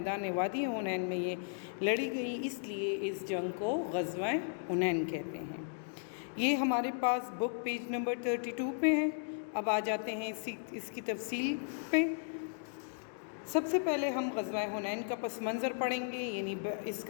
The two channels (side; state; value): right; silent; digital silence